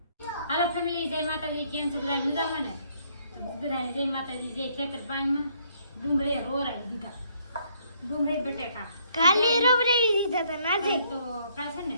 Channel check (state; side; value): inverted; both; correlation -0.67